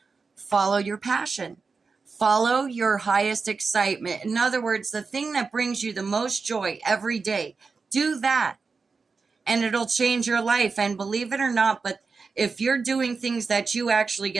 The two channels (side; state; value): left; quieter; 4.7 dB